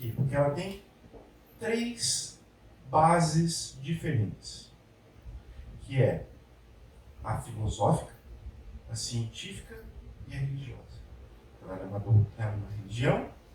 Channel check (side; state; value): both; identical; correlation 1.00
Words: Porque ela tem 3 bases diferentes, que é a filosófica, a científica e a religiosa. Ela é uma religião,